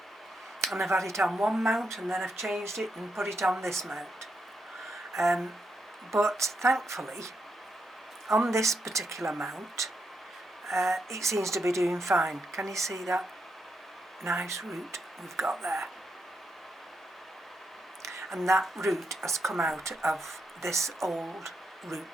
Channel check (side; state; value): both; normal; correlation 0.81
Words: and I've had it on one mount and then I've changed it and put it on this mount, but thankfully on this particular mount it seems to be doing fine. Can you see that nice root we've got there? And that root has come out of this old